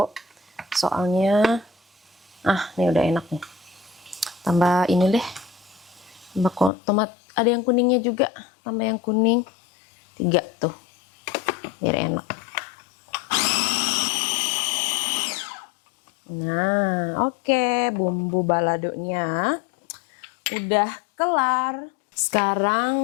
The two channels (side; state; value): right; drops out; at 6.7 s